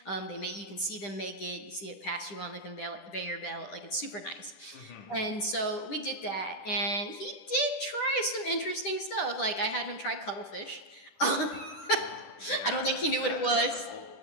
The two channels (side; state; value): right; late; 10 ms